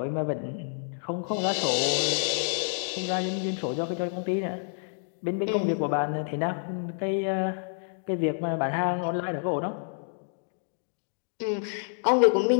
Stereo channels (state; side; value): silent; right; digital silence